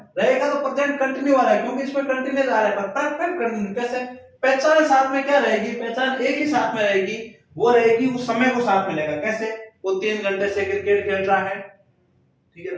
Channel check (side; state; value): both; identical; correlation 1.00